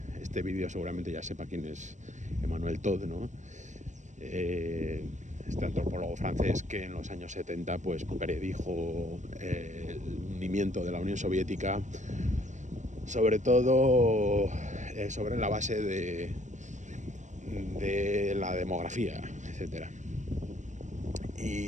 este vídeo seguramente ya sepa quién es Emmanuel Todd, ¿no? Este antropólogo francés que en los años 70 pues predijo el hundimiento de la Unión Soviética, sobre todo sobre la base de la demografía, etcétera,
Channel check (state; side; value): late; left; 0.35 ms